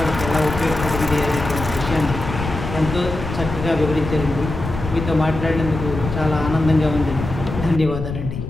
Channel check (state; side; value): noise; left; rumble, 7 dB below the sound